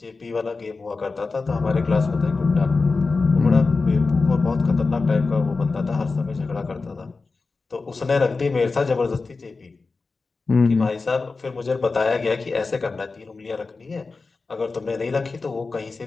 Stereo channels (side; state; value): right; quieter; 4.0 dB